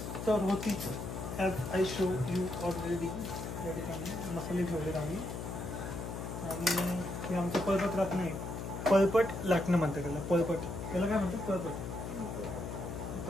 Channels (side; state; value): left; noise; hum, 6 dB below the sound